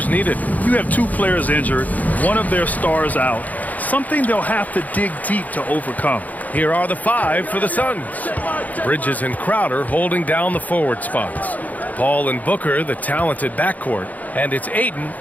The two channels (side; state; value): right; late; 0.078 ms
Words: needed. You have 2 players injured, one of their stars out. Something they'll have to dig deep to overcome. Here are the 5 for the Suns. Bridges and Crowder holding down the forward spots. Paul and Booker, the talented backcourt. And it's Ayton